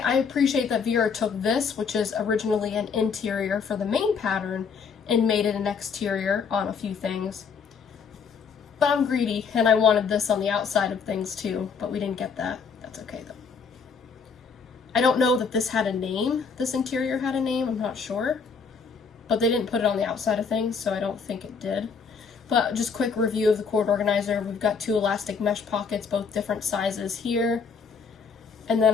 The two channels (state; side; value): quieter; right; 5.7 dB